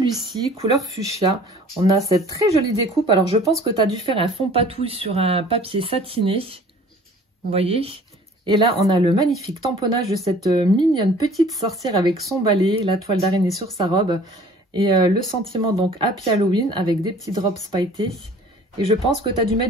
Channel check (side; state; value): both; normal; correlation 0.50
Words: couleur fuchsia. On a cette très jolie découpe. Alors, je pense que tu as dû faire un fond patouille sur un papier satiné. Vous voyez? Et là, on a le magnifique tamponnage de cette mignonne petite sorcière avec son balai, la toile d'araignée sur sa robe. Et le sentiment, donc, Happy Halloween avec des petits drops pailletés. Et je pense que tu as dû